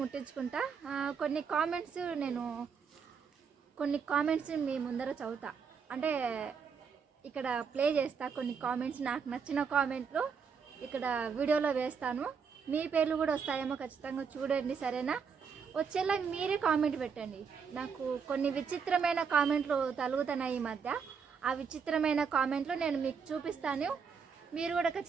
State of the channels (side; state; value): left; quieter; 6.2 dB